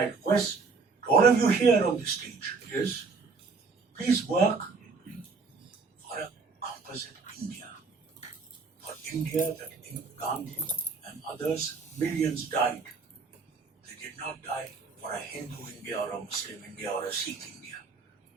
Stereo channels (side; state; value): left; quieter; 4.6 dB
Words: request to all of you here on this stage is, please work for a composite India. For India that Gandhi and others, millions died. They did not die for a Hindu India or a Muslim India or a Sikh India.